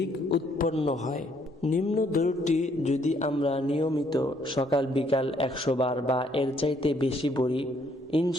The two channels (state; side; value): normal; both; correlation 0.67